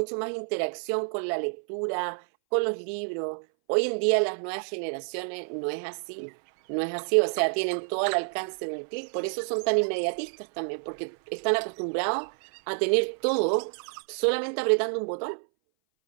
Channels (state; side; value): silent; left; 59 dB below the other